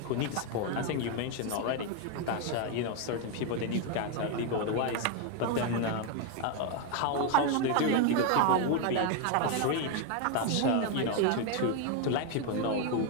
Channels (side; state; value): both; different; correlation 0.01